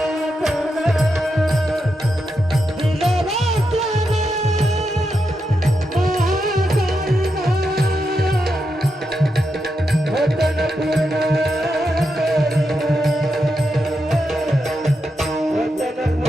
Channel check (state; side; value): normal; both; correlation 0.85